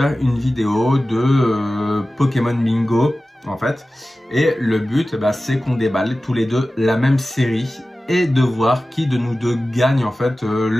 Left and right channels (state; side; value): normal; both; correlation 0.96